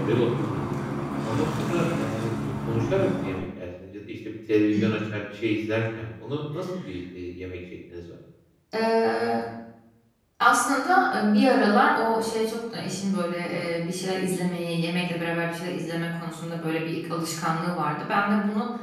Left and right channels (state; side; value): identical; both; correlation 1.00